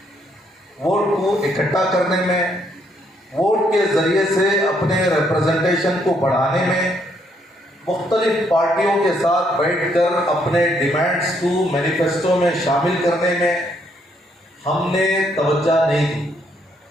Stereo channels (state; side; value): normal; both; correlation 0.71